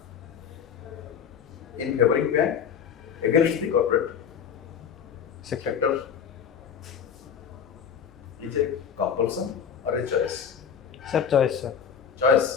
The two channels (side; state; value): right; quieter; 7.5 dB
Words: in favoring bank against the corporate sector is a compulsion or a choice? Sir, choice sir.